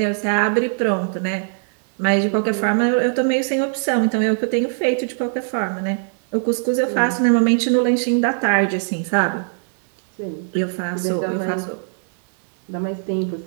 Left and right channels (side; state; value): left; silent; digital silence